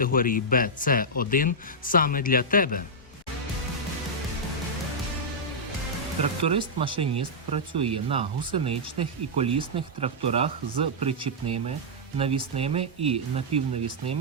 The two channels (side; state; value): both; normal; correlation -0.09